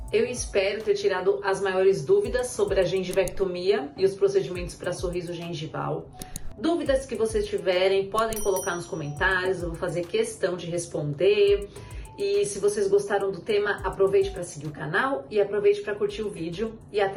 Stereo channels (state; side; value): identical; both; correlation 1.00